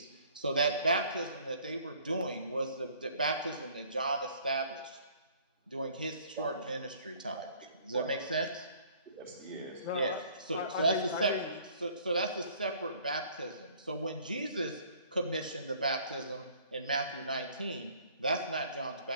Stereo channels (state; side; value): inverted; both; correlation -0.55